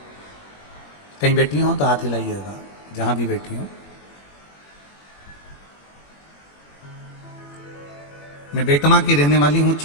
कहीं बैठी हो तो हाथ हिलाइएगा, जहां भी बैठी हो। मैं बेटमा की रहने वाली हूँ,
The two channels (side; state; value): right; late; 21 ms